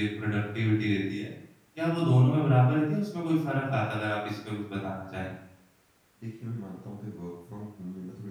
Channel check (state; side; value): identical; both; correlation 1.00